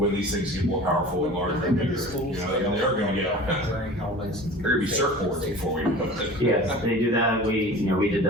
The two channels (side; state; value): both; normal; correlation 0.39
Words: these things get more powerful and larger and bigger. You know, they're gonna get, Wearing helmets. there are gonna be surfboards before we do it. yeah, they do that. We did